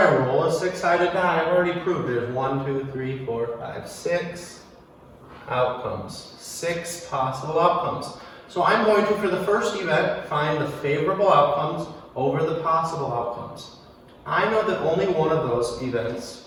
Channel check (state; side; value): identical; both; correlation 1.00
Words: roll a 6-sided die, I've already proved there's 1, 2, 3, 4, 5, 6 outcomes. 6 possible outcomes. So I'm going to, for the first event, find the favorable outcomes over the possible outcomes. I know that only one of those events